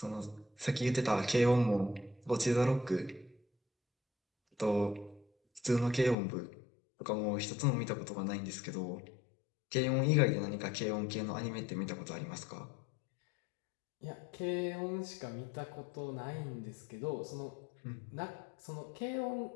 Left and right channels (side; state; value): right; drops out; at 6.2 s